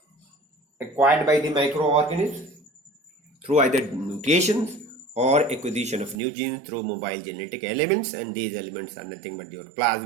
acquired by the microorganisms through either mutations or acquisition of new genes through mobile genetic elements, and these elements are nothing but your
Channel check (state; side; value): drops out; left; at 6.2 s